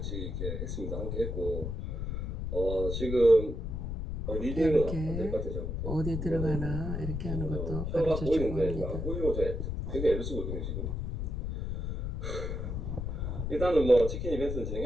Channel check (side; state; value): left; noise; rumble, 3 dB below the sound